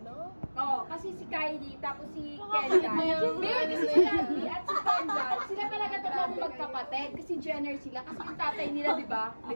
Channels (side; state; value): both; inverted; correlation -1.00